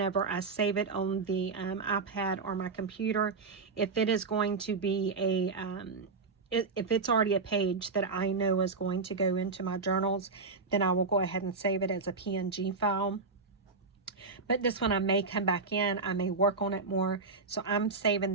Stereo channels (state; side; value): quieter; left; 4.3 dB